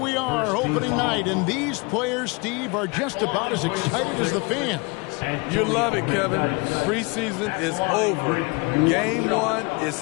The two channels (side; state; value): right; quieter; 28.1 dB